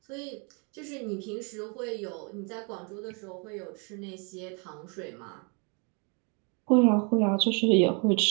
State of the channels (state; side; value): quieter; left; 34.5 dB